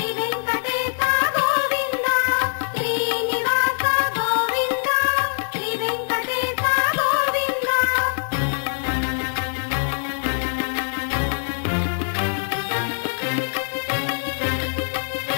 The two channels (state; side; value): silent; right; 57 dB below the other